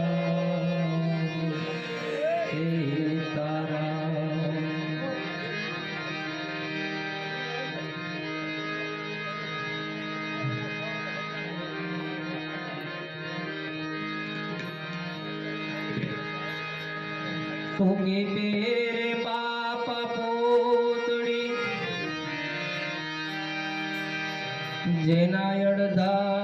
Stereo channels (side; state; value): both; identical; correlation 1.00